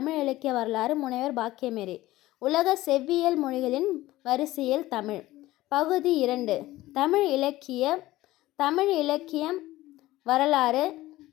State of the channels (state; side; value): quieter; right; 16.9 dB